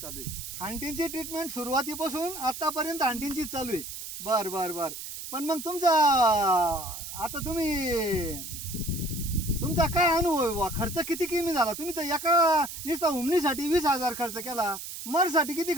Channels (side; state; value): right; noise; hiss, 9 dB below the sound